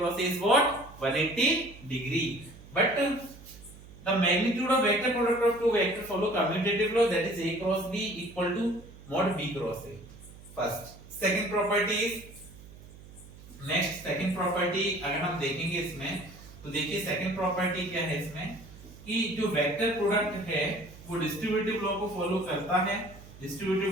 A is what? 180 degree. But the magnitude of vector product of two vector follow commutative law, that is a cross b equal to mod b cross a. First, second property is, next second property अगर हम देखेंगे इसमें तो देखिए second property क्या है इसमें कि जो vector product है वो distributive law को follow करता है.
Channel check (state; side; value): noise; right; hum, 19 dB below the sound